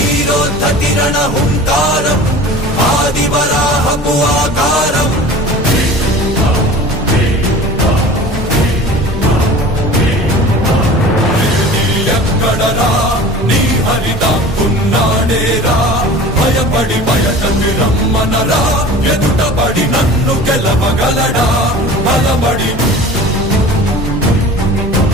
రణ హుంకారం ఆదివరాహపు ఆకారం ఎక్కడరా నీ హరిదాక్కున్నాడేరా భయపడి బయటకి రమ్మనరా ఎదుటపడి నన్ను గెలవగలడా బలపడి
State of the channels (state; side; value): normal; both; correlation 0.40